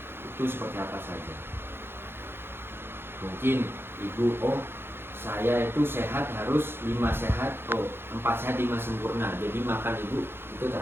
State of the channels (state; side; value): late; left; 0.11 ms